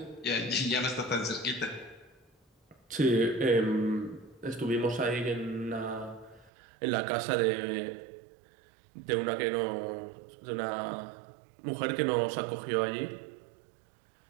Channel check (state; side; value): drops out; left; at 6.5 s